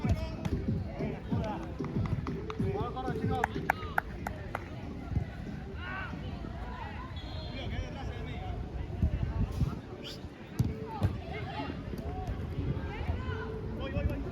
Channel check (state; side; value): identical; both; correlation 1.00